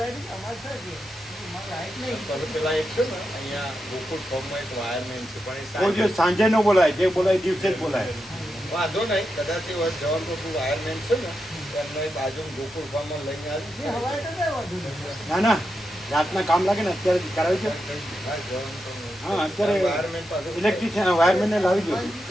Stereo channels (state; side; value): normal; both; correlation 0.87